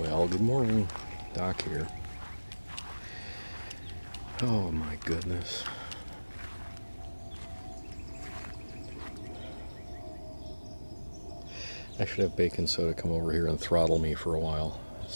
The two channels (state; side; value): inverted; both; correlation -1.00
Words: good morning. Doc here. Oh my goodness. I should have baking soda come over here and throttle me for a while.